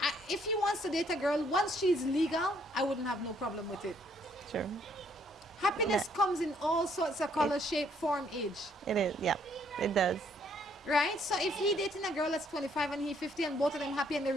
if he wants to date a girl, once she's legal, I wouldn't have no problem with it. Sure. Happiness comes in all sorts of color, shape, form, age. It is, yeah, it does. Right? So if he dating a girl that's 25 and he 50 and both of them happy and they're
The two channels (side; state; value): both; normal; correlation 0.67